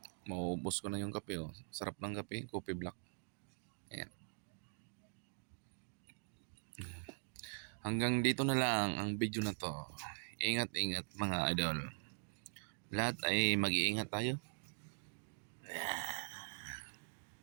Maubos ko na yung kape. Sarap ng kape, coffee black. Ayan. Hanggang dito na lang ang video na to. Ingat mga idol. Lahat ay mag-iingat tayo.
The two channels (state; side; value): silent; left; digital silence